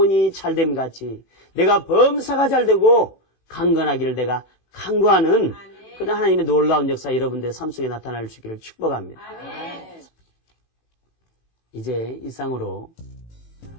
잘됨 같이 내가 범사가 잘되고 강건하기를 내가 간구하는 그런 하나님의 놀라운 역사 여러분들의 삶 속에 나타날 수 있기를 축복합니다. 이제 이상으로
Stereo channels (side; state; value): right; late; 18 ms